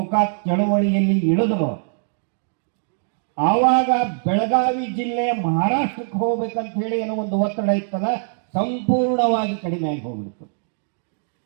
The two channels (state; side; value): silent; left; digital silence